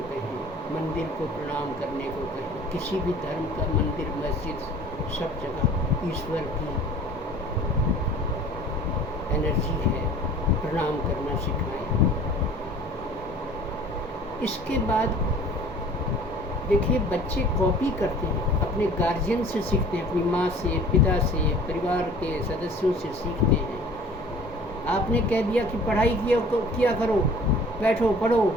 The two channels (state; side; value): normal; both; correlation 0.48